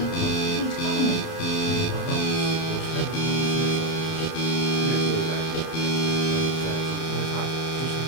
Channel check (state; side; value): late; right; 31 ms